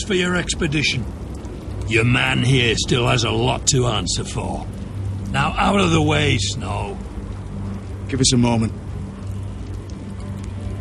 for your expedition. Your man here still has a lot to answer for. Now out of the way, Snow. Give us a moment.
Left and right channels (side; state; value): both; identical; correlation 1.00